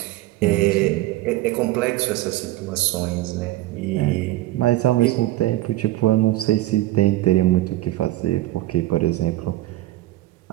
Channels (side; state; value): left; quieter; 16.5 dB